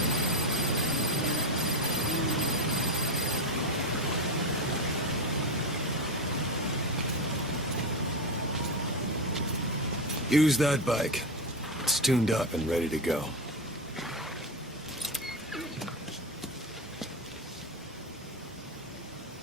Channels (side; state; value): both; normal; correlation 0.16